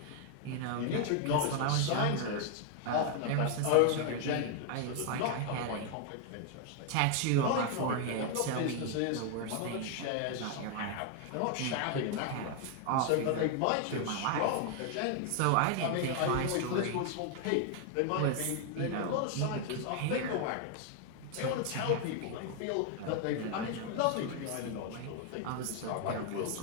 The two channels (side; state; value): both; different; correlation 0.00